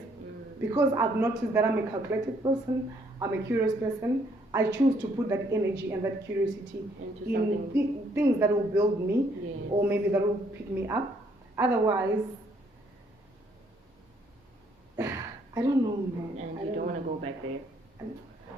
Because I've noticed that I'm a calculated person, I'm a curious person. I choose to put that energy and that curiosity in things that will build me, or maybe that will pick me up. Otherwise, I don't know, man. And you don't want to go back there.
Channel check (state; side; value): normal; both; correlation 0.68